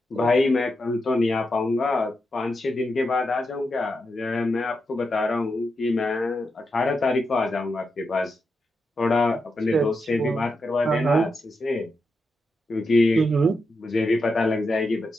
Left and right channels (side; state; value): both; normal; correlation 0.86